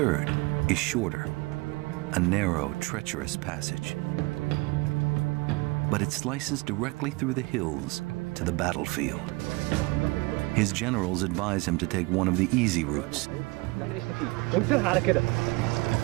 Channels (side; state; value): left; quieter; 25.1 dB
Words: is shorter, a narrow, treacherous passage. But it slices directly through the hills to the battlefield. His generals advise him to take one of the easy routes.